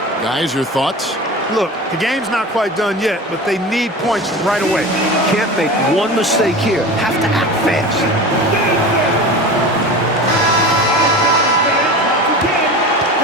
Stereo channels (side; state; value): both; normal; correlation 0.32